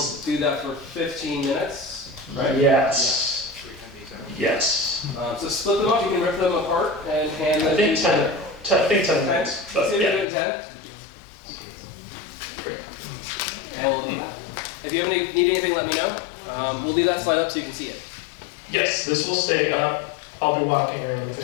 do that for 15 minutes, right? Yes. Yeah. Yes. So split them up. You can rip them apart and hand them. I think 10. I think 10 minutes. Let's do Yeah. it in 10. Great. And we'll do that. If you need anything, let me know. We'll leave that slide up so you can see it. Yes, this will stay up. I'll be walking around if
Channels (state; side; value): drops out; right; at 10.2 s